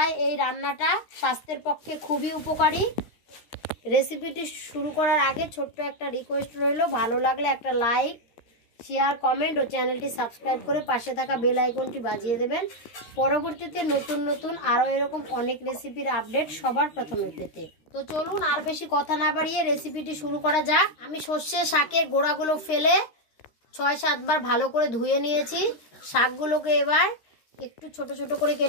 এই রান্নাটা স্বাস্থ্যের পক্ষে খুবই উপকারী। রেসিপিটি শুরু করার আগে ছোট্ট একটা রিকোয়েস্ট রইল, ভালো লাগলে একটা লাইক, শেয়ার, কমেন্ট ও চ্যানেলটি সাবস্ক্রাইব করে পাশে থাকা বেল আইকনটি বাজিয়ে দেবেন পরবর্তীতে নতুন নতুন আরও এরকম অনেক রেসিপির আপডেট সবার প্রথমে পেতে। তো চলুন আর বেশি কথা না বাড়িয়ে রেসিপিটি শুরু করা যাক। আমি সর্ষে শাকের গোড়াগুলো ফেলে 6-7 বার ভালো করে ধুয়ে নিয়েছি। শাকগুলোকে এবার একটু ছোট ছোট করে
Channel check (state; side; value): late; right; 13 ms